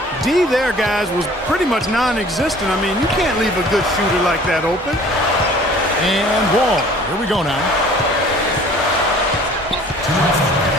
D there, guys, was pretty much non-existent. I mean, you can't leave a good shooter like that open. And Wall. Here we go now.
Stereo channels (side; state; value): both; normal; correlation 0.50